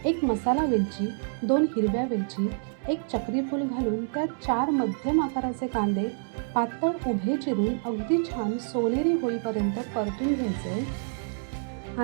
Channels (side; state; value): left; silent; digital silence